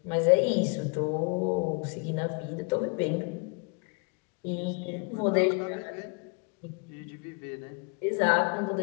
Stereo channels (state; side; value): quieter; right; 33.3 dB